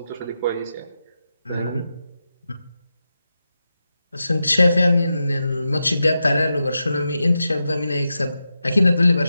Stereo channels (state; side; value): inverted; both; correlation -0.89